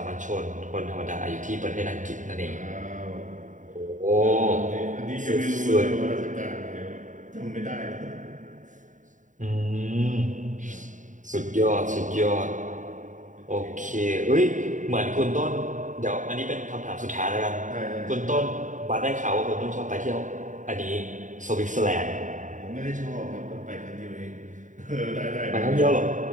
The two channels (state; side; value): late; left; 0.37 ms